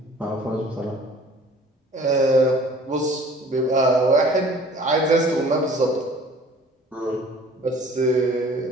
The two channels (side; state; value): both; normal; correlation 0.50